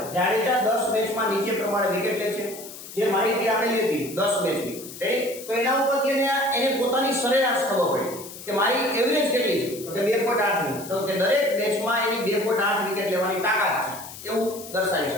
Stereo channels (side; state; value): left; noise; hiss, 14 dB below the sound